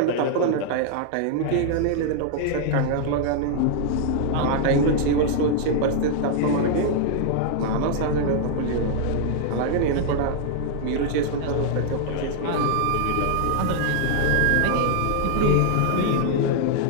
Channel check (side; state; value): both; different; correlation -0.01